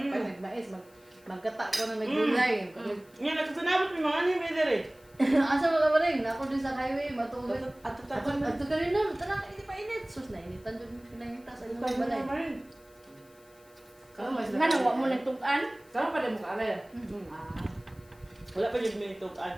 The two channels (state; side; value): noise; left; hiss, 28 dB below the sound